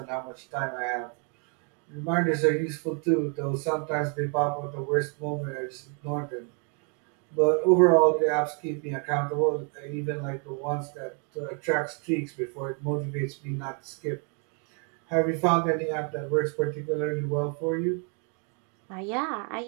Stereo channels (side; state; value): left; quieter; 39.1 dB